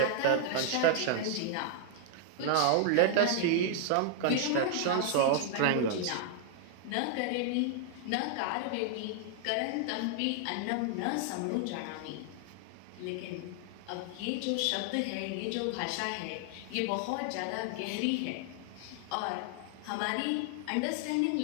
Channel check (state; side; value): different; both; correlation 0.00